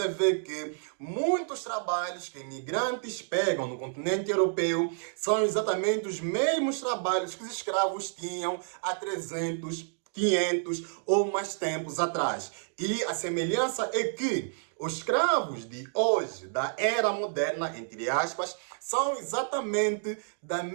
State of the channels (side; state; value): left; silent; digital silence